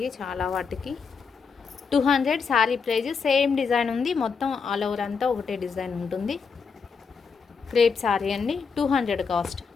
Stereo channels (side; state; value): right; quieter; 5.5 dB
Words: చాలా వాటికి. 200 శారీ ప్రైజ్. సేమ్ డిజైన్ ఉంది, మొత్తం ఆల్ ఓవర్ అంతా ఒకటే డిజైన్ ఉంటుంది. క్రేప్ శారీ అండి, 200 కాస్ట్.